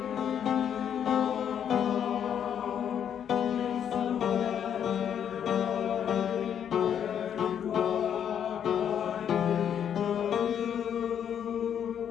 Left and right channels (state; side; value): quieter; right; 8.9 dB